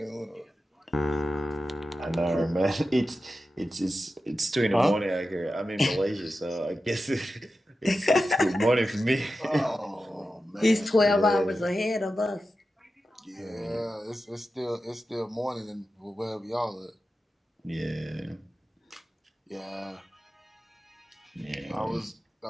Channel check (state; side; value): normal; both; correlation 0.92